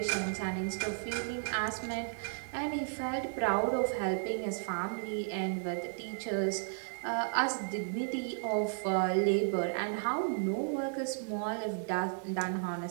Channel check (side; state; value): left; silent; digital silence